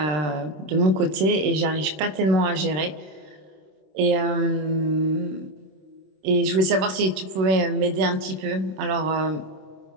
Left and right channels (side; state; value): left; late; 26 ms